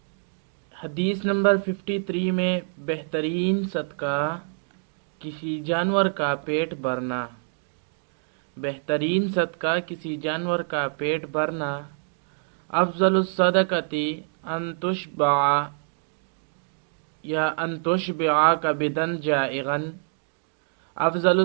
حدیث نمبر 53 میں بہترین صدقہ کسی جانور کا پیٹ بھرنا۔ بہترین صدقہ کسی جانور کا پیٹ بھرنا۔ افضل الصدقۃ ان تشبع یا ان تشبع کبدا جائعا۔ افضل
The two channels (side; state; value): left; silent; 61 dB below the other